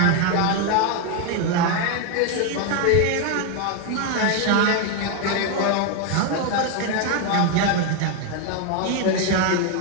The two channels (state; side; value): different; both; correlation 0.01